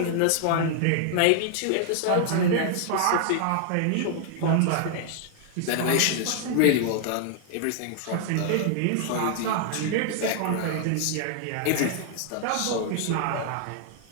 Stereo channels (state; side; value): different; both; correlation 0.00